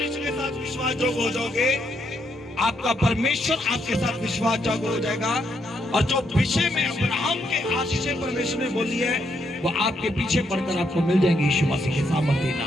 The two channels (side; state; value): both; normal; correlation 0.77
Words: के साथ विश्वास जोग हो जाओगे, आपका परमेश्वर आपके साथ विश्वास जोग हो जाएगा। और जो विषय में अब्राहम के आशीष परमेश्वर ने बोली है, वो आपके पीछे पड़कर आपको मिल जाएंगे यीशु मसीह के सामर्थ्य